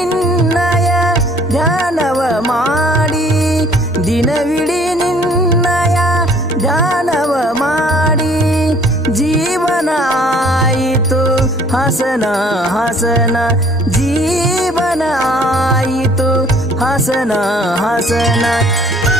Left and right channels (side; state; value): both; normal; correlation 0.57